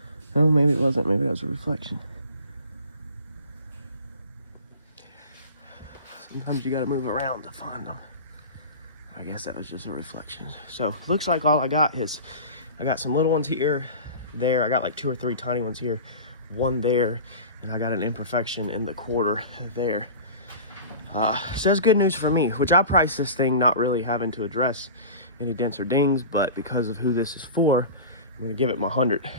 Oh, maybe it wasn't. Maybe that was a reflection. Sometimes you got to move around to find them. I guess that was just a reflection. So looks like all I got is, I got some little ones here, there. I got like 2 or 3 tiny ones here, one there, and I got an imperfection in the quarter there. So that's good news for me, which I priced this thing not really having to address any dents or dings, but because of who this is for, I'm gonna give it my 100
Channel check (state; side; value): inverted; both; correlation -0.35